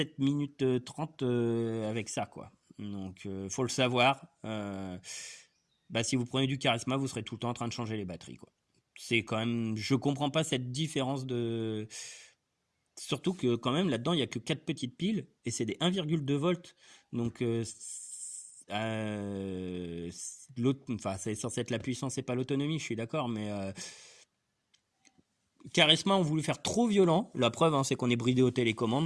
minutes 30 avec ça, quoi. Donc faut le savoir. Bah, si vous prenez du charisma, vous serez tout le temps en train de changer les batteries, quoi. C'est quand même, je comprends pas cette différence de. Surtout que quand même là-dedans, il y a que 4 petites piles et c'est des 1,2 volts. Donc l'autre, enfin, c'est censé être la puissance et pas l'autonomie, je suis d'accord, mais Charisma ont voulu faire trop violent. La preuve, hein, c'est qu'on est bridé aux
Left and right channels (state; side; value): identical; both; correlation 1.00